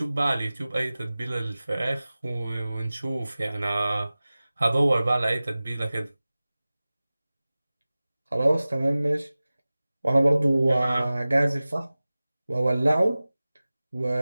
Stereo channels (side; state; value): both; inverted; correlation -0.98